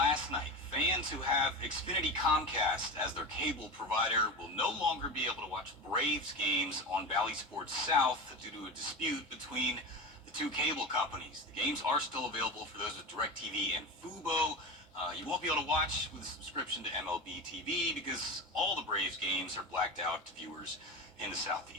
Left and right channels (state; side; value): normal; both; correlation 0.25